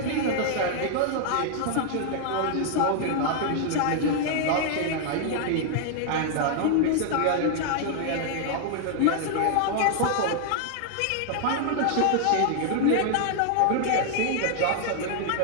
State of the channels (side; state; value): both; different; correlation 0.00